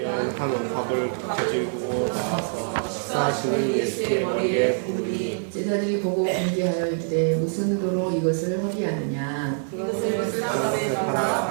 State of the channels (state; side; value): silent; left; digital silence